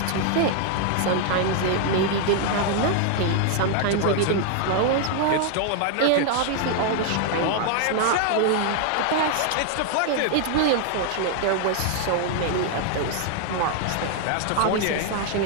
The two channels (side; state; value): both; different; correlation 0.00